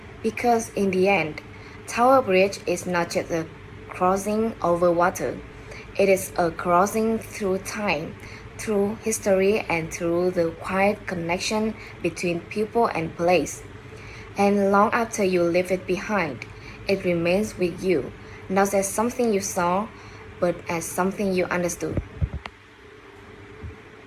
Because in the end, Tower Bridge is not just a crossing over water. It is a crossing through time, through history, and through the quiet connection between people and place. And long after you leave it behind, it remains with you, not as something you saw, but as something you understood.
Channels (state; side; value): identical; both; correlation 1.00